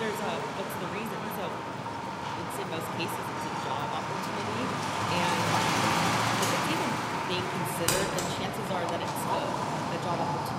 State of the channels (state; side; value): identical; both; correlation 1.00